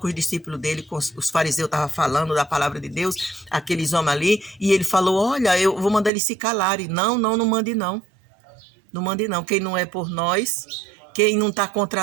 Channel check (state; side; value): drops out; left; at 6.1 s